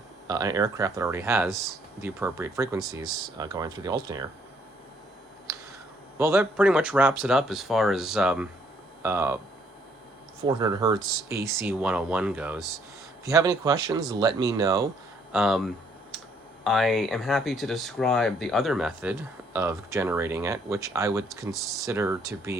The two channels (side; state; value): both; normal; correlation 0.66